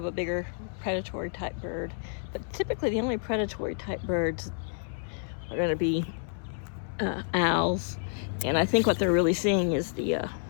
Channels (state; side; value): silent; right; digital silence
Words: a bigger predatory type bird. But typically the only predatory type birds are going to be owls, and I think what they're really seeing is the